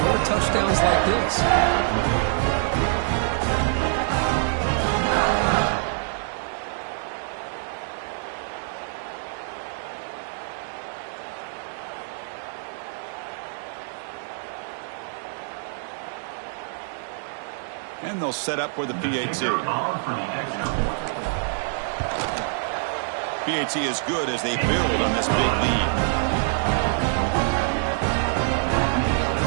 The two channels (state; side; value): silent; left; digital silence